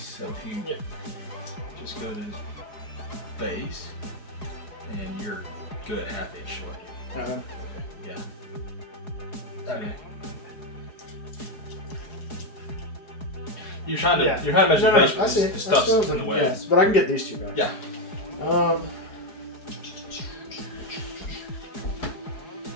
So if you just go to his base, and you're good at half inch short. Okay. Yeah. Okay. You're trying to measure the base, but the stuff's in the way. Yes, but I can get these two guys. Yeah.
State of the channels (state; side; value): late; right; 4.8 ms